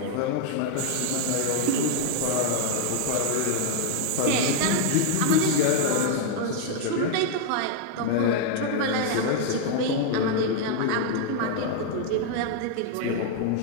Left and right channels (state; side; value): different; both; correlation 0.00